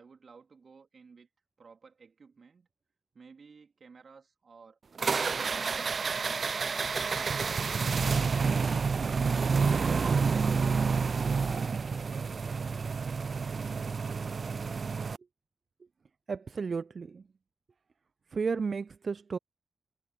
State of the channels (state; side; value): quieter; left; 4.8 dB